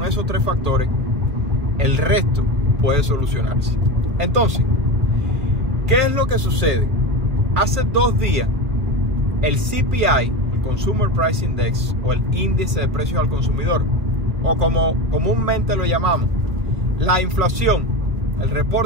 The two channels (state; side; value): late; left; 1.6 ms